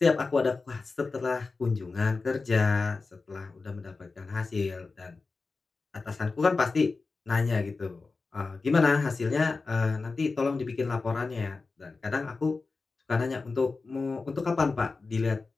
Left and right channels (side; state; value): right; quieter; 4.0 dB